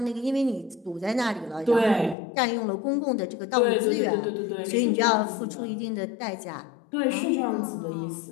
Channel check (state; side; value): drops out; right; at 2.1 s